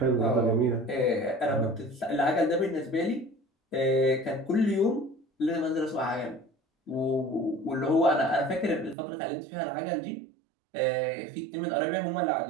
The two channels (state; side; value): drops out; left; at 9.0 s